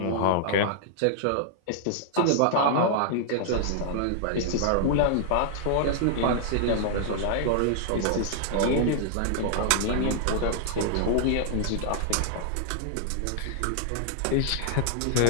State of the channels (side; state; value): both; different; correlation -0.01